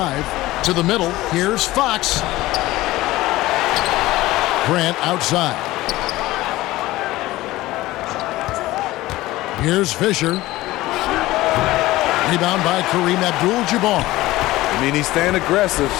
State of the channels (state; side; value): quieter; right; 17.7 dB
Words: To the middle. Here's Fox. Grant outside. Here's Fisher. Rebound by Kareem Abdul-Jabbar. I mean, he's staying aggressive,